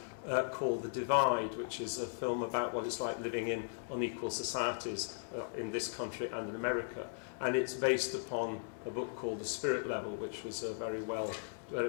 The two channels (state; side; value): silent; right; digital silence